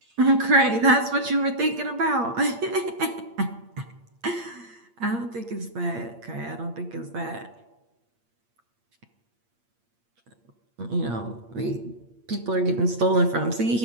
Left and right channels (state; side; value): late; left; 8.6 ms